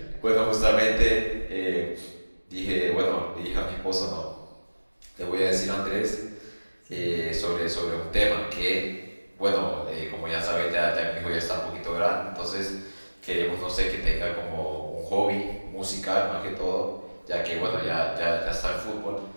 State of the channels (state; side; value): inverted; both; correlation -1.00